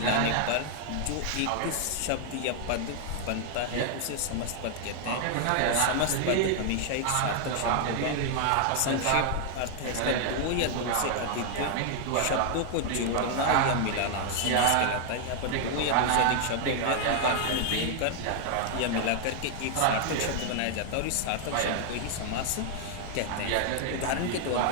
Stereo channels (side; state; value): both; different; correlation 0.00